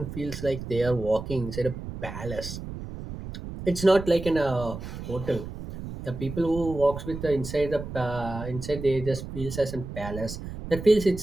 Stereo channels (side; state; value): right; noise; rumble, 9 dB below the sound